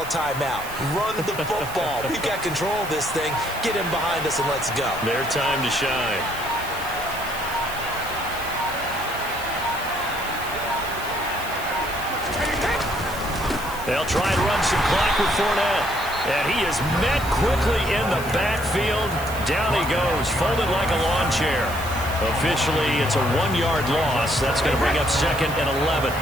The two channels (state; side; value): noise; right; hiss, 14 dB below the sound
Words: a timeout. Run the football. We've got control of this thing. Get him behind us and let's go. Their time to shine. They'll try and run some clock with Fournette. And he is met quickly in the backfield. Down he goes, folded like a lawn chair. Officially, it's a 1-yard loss. That's going to bring up 2nd and 11.